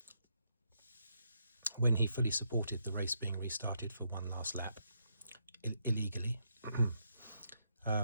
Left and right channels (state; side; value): inverted; both; correlation -0.79